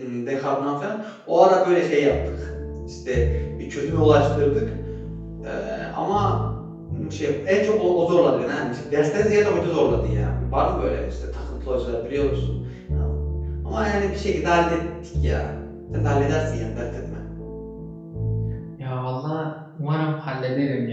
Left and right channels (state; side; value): identical; both; correlation 1.00